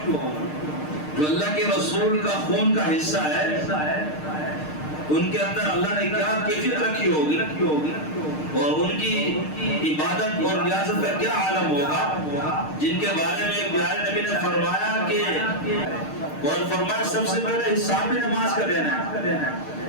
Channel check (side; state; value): right; late; 6.6 ms